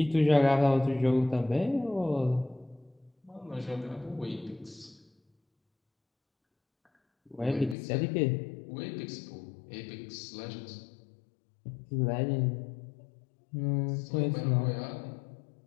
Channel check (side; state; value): right; drops out; at 7.8 s